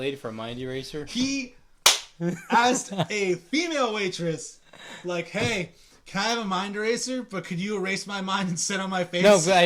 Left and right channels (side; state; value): both; identical; correlation 1.00